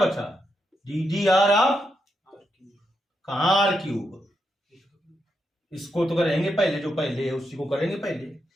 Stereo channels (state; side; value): normal; both; correlation 0.83